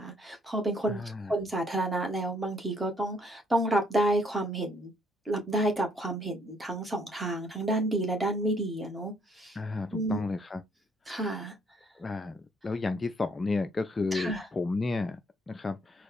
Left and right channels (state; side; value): normal; both; correlation 0.67